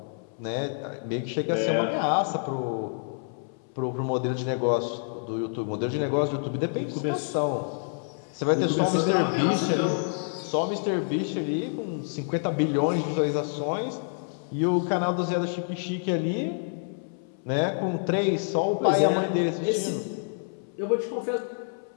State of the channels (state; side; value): silent; right; 60 dB below the other